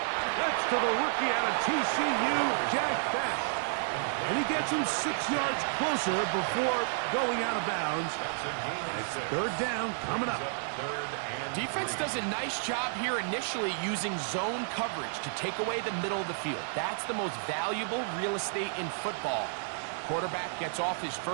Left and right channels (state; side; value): silent; left; 57 dB below the other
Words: That's to the rookie out of TCU, Jack Best. And he gets him 6 yards closer before going out of bounds. It's 3rd down coming up. Defense does a nice job here initially using zone coverage to take away the middle of the field. That's the most valuable real estate in football. Quarterback gets off his